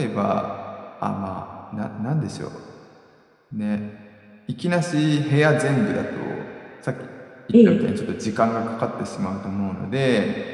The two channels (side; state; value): both; identical; correlation 1.00